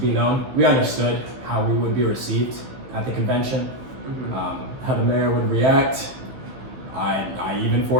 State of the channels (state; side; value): late; left; 15 ms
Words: known. We understood how we would be received at the convention, how the mayor would react. I even